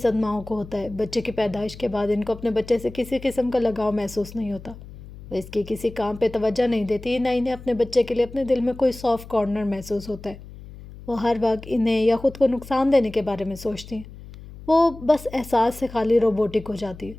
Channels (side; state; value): left; noise; hum, 16 dB below the sound